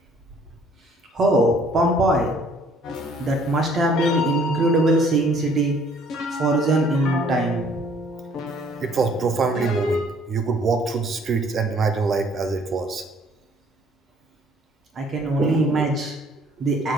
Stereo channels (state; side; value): normal; both; correlation 0.59